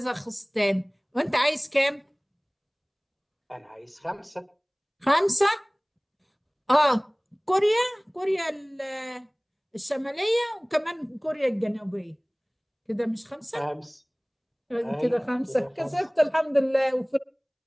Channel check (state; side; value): identical; both; correlation 1.00